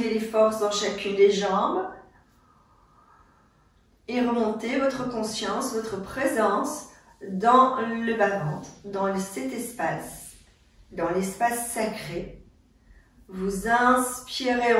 les forces dans chacune des jambes. Et remontez votre conscience, votre présence dans le bas-ventre, dans cet espace, dans l'espace sacré. Vous inspirez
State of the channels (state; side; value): identical; both; correlation 1.00